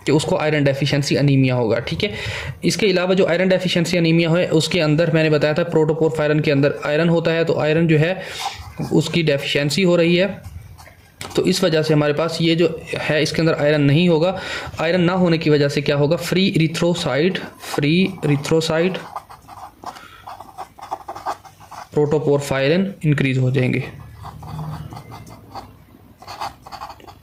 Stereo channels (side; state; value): both; identical; correlation 1.00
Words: कि उसको आयरन डेफिशिएंसी अनीमिया होगा, ठीक है। इसके अलावा जो आयरन डेफिशिएंसी अनीमिया है उसके अंदर मैंने बताया था प्रोटोपोरफायरन के अंदर आयरन होता है, तो आयरन जो है उसकी डेफिशिएंसी हो रही है, तो इस वजह से हमारे पास ये जो है इसके अंदर आयरन नहीं होगा। आयरन ना होने की वजह से क्या होगा, फ्री इरिथ्रोसाइट प्रोटोपोरफायरन इंक्रीज हो जाएंगे।